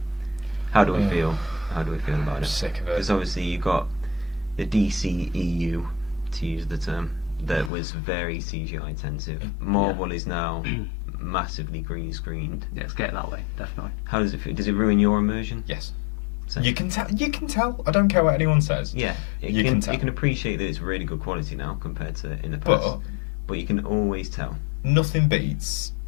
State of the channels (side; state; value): right; drops out; at 7.7 s